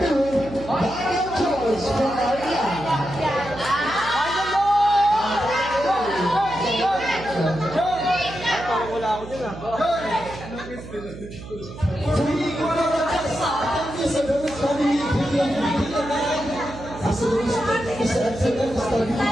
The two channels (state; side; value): noise; right; hum, 13 dB below the sound